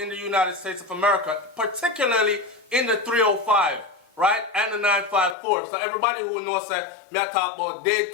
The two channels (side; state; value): right; drops out; at 5.4 s